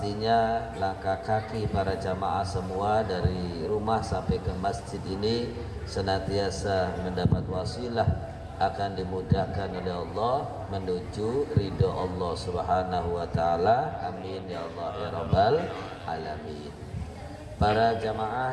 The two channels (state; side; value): identical; both; correlation 1.00